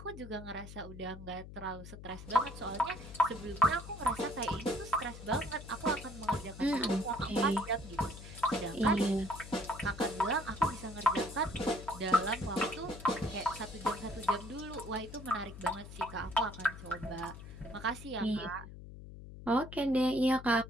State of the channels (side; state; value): left; noise; hum, 13 dB below the sound